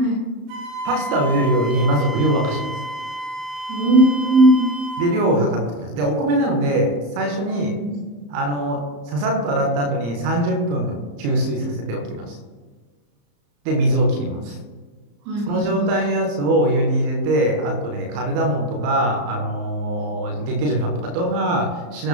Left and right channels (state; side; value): late; left; 34 ms